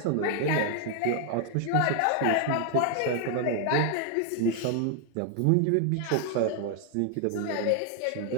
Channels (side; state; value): both; different; correlation 0.00